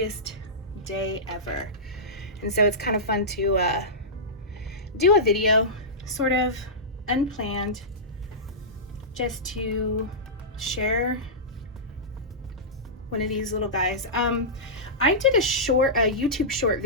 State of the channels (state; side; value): normal; both; correlation -0.16